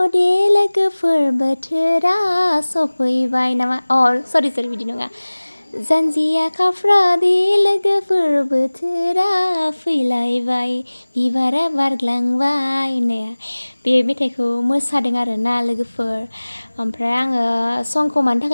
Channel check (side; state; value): both; inverted; correlation -1.00